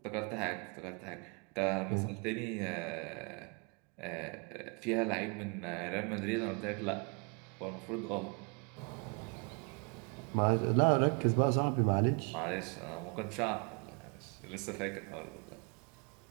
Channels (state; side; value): quieter; left; 34.4 dB